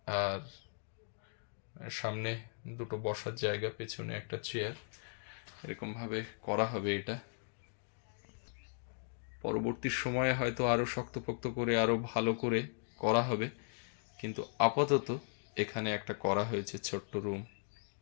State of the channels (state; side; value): silent; right; digital silence